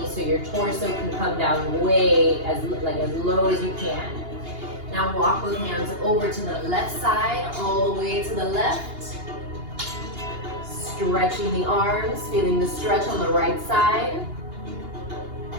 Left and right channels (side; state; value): left; late; 2.8 ms